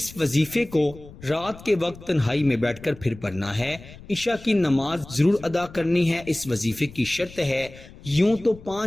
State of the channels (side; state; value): left; noise; rumble, 18 dB below the sound